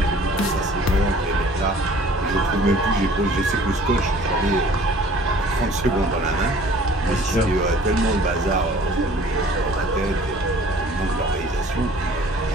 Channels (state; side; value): normal; both; correlation 0.51